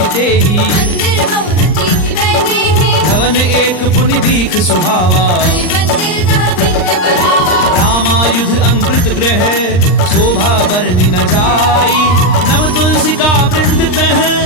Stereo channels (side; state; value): right; late; 39 ms